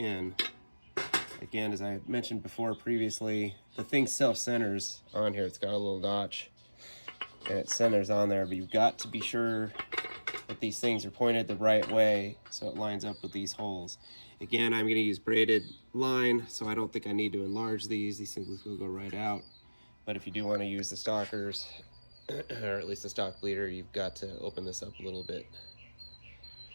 Again, as I mentioned before previously, the thing self-centers on here. It's got a little notch and it centers on there, but you've got to be sure that these things are pointed the right way so it lines up with these holes. Again, I'm going to use braided line, so I don't think I need to enlarge these. These things will go right out. But if you do want to use the stockers, or at least the stock bleeder, you've got to open this up a little bit.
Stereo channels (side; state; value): both; inverted; correlation -1.00